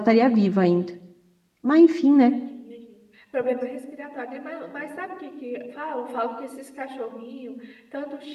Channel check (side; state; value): both; identical; correlation 1.00